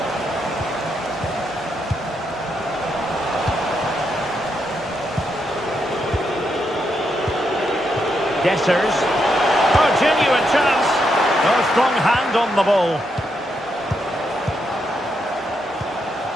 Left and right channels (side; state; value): both; normal; correlation 0.80